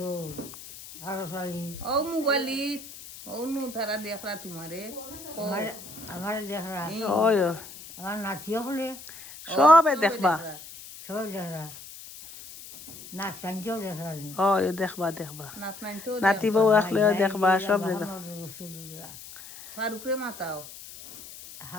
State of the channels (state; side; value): noise; left; hiss, 15 dB below the sound